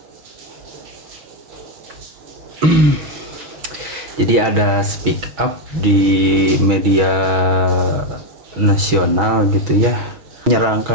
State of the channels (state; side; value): late; left; 6.3 ms